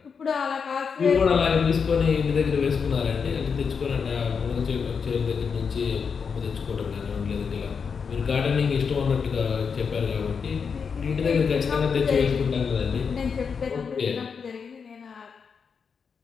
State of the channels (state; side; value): quieter; right; 6.0 dB